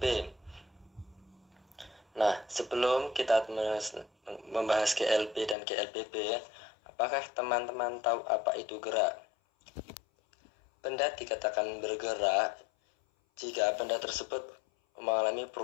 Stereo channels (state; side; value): drops out; right; at 5.6 s